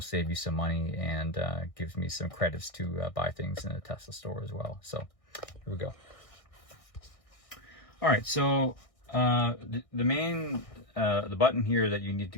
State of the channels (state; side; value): late; right; 1.6 ms